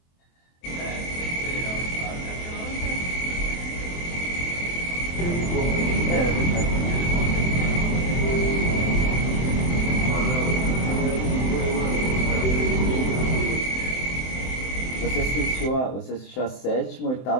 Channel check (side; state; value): right; late; 23 ms